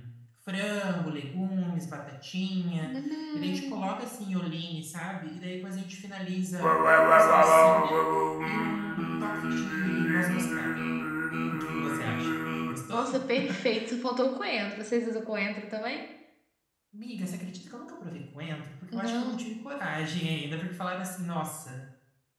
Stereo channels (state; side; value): identical; both; correlation 1.00